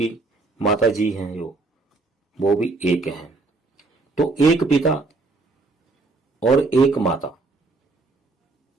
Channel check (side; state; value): left; quieter; 3.6 dB